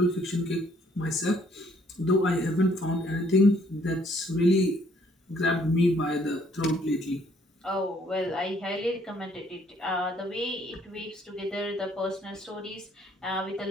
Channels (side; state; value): both; normal; correlation 0.64